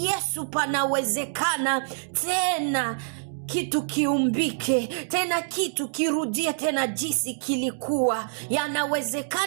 panawezekana. Tena kitu kiumbike, tena kitu kirudie tena jinsi kilikuwa.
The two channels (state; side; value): silent; left; digital silence